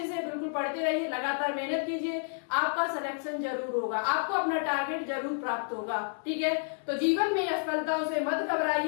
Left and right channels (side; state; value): right; silent; 57 dB below the other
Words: बिल्कुल पढ़ते रहिए, लगातार मेहनत कीजिए, आपका सिलेक्शन जरूर होगा, आपको अपना टारगेट जरूर प्राप्त होगा, ठीक है। तो जीवन में असफलताओं से मत